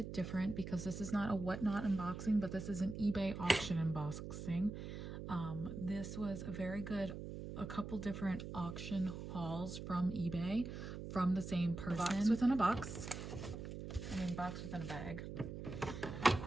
different because this is not a whatnot unboxing, but this is an eBay auction unboxing. This was a couple different auction hauls from eBay from the same person. Box within a box. Box within a bag.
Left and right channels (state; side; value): noise; right; hum, 7 dB below the sound